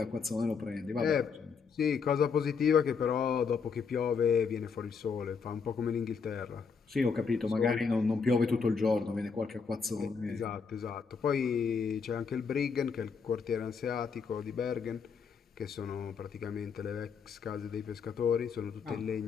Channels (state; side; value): quieter; right; 5.7 dB